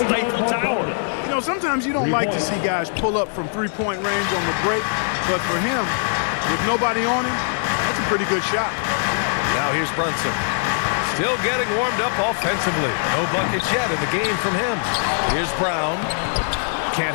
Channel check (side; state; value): right; silent; digital silence